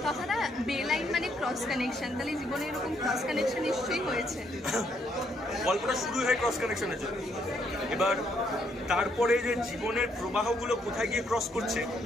কথাটা বেলাইন মানে ক্রস কানেকশন, তাহলে জীবনে এরকম ক্রস কানেকশন নিশ্চয়ই হয়েছে। গল্পটা শুরু হয় ক্রস কানেকশনের জন্য, এবার তারপরে যে জীবনের প্রবাহগুলো কোথায় গিয়ে ক্রস করছে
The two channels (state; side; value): normal; both; correlation 0.72